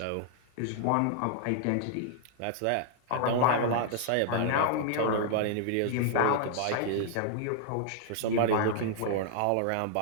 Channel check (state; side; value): different; both; correlation -0.01